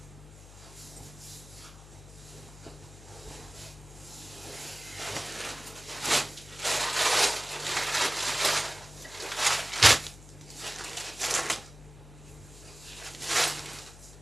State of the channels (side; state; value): left; noise; hum, 18 dB below the sound